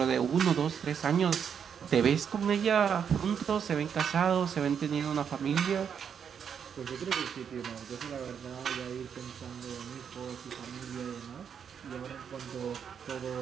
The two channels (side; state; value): left; quieter; 7.5 dB